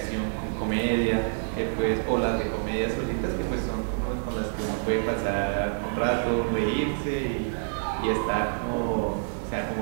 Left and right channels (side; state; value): left; silent; digital silence